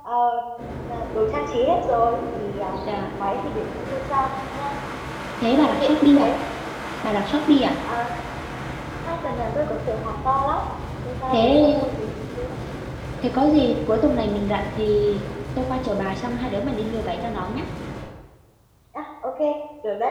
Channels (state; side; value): identical; both; correlation 1.00